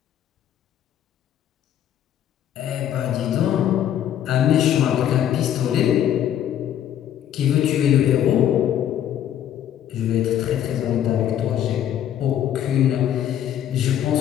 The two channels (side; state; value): right; quieter; 10.6 dB